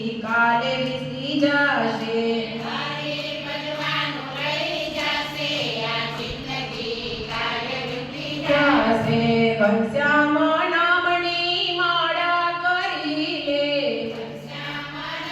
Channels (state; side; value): identical; both; correlation 1.00